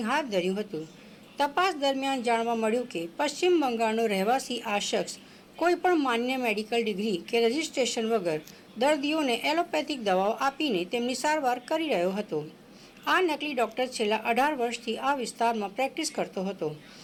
હાથ ધર્યું હતું। તપાસ દરમિયાન જાણવા મળ્યું કે પશ્ચિમ બંગાળનો રહેવાસી આ શખ્સ કોઈપણ માન્ય મેડિકલ ડિગ્રી કે રજિસ્ટ્રેશન વગર દર્દીઓને એલોપેથિક દવાઓ આપીને તેમની સારવાર કરી રહ્યો હતો। આ નકલી ડૉક્ટર છેલ્લા 18 વર્ષથી આ વિસ્તારમાં પ્રેક્ટિસ કરતો હતો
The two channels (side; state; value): both; identical; correlation 1.00